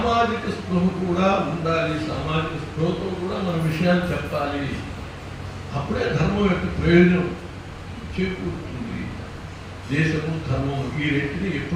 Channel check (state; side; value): identical; both; correlation 1.00